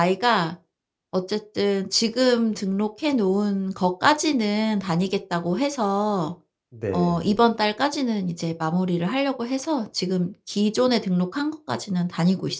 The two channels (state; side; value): identical; both; correlation 1.00